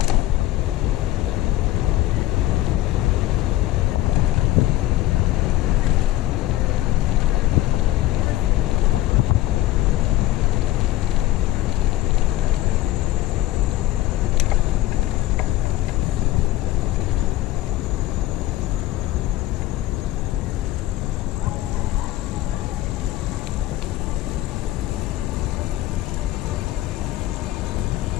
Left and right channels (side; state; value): right; quieter; 15.5 dB